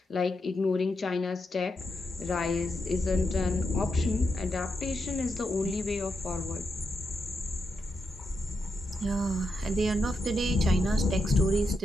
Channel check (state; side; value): normal; both; correlation 0.85